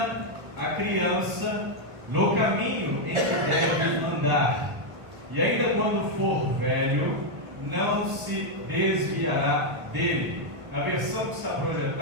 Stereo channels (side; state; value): left; late; 1.4 ms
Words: a criança no caminho em que deve andar, e ainda quando for velho, não se desviará dele. Na versão que está